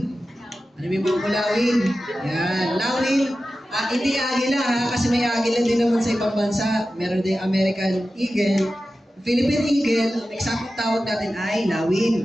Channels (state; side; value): normal; both; correlation 0.94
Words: Ano yung mga Lawin? Yan, Lawin. Hindi agila ha, kasi may agila din naman sa ibang bansa. Meron din American Eagle. Philippine Eagle, ang eksaktong tawag natin ay